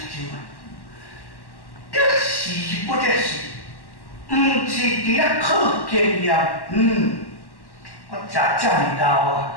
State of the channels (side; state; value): right; late; 1.1 ms